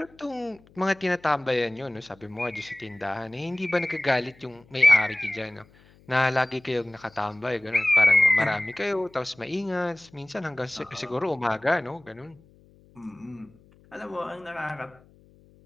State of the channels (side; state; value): left; noise; hum, 28 dB below the sound